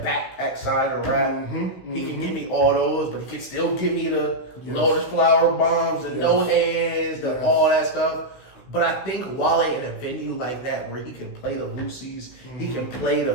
side of rap, he can give me all those, but he can still give me the Lotus Flower Bombs, the No Hands, all that stuff. But I think Wale in a venue like that where he can play the Lucy's, he can play the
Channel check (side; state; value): right; late; 16 ms